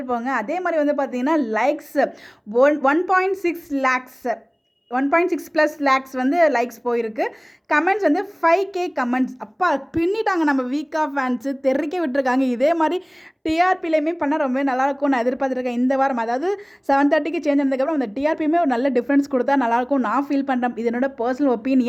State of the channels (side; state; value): both; identical; correlation 1.00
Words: போங்க. அதே மாதிரி வந்து பார்த்தீங்கன்னா லைக்ஸ் 1.6 லேக்ஸ் 1.6+ லேக்ஸ் வந்து லைக்ஸ் போயிருக்கு. கமெண்ட்ஸ் வந்து 5K கமெண்ட்ஸ். அப்பா பின்னிட்டாங்க நம்ம வீக்கா ஃபேன்ஸு, தெறிக்க விட்டுருக்காங்க. இதே மாதிரி டிஆர்பிலையுமே பண்ணால் ரொம்ப நல்லாயிருக்கும் நான் எதிர்பார்த்துருக்கேன் இந்த வாரம். அதாவது 7:30க்கு சேஞ்ச் ஆனதுக்கப்புறம் அந்த டிஆர்பியுமே ஒரு நல்ல டிஃப்ரென்ஸ் கொடுத்தா நல்லாயிருக்கும் நான் ஃபீல் பண்ணுறேன். இது என்னோட பர்சனல்